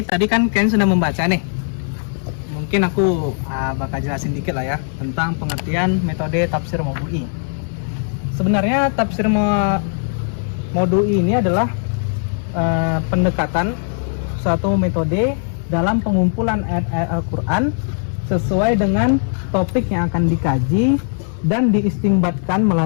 tadi kan kalian sudah membaca nih. Mungkin aku bakal jelasin dikit lah ya tentang pengertian metode tafsir maudhu'i. Sebenarnya tafsir maudhu'i ini adalah pendekatan suatu metode dalam pengumpulan ayat-ayat Al-Quran sesuai dengan topik yang akan dikaji dan diistinbatkan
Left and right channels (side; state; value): right; silent; digital silence